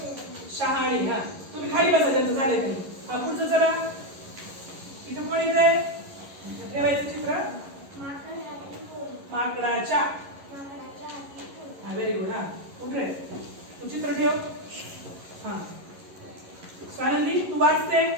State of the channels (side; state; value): left; late; 11 ms